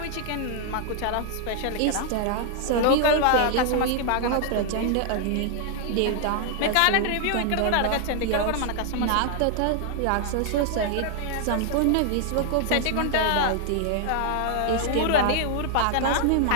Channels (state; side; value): different; both; correlation 0.00